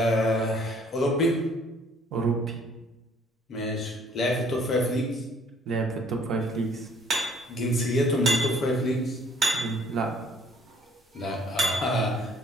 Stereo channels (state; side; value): normal; both; correlation 0.60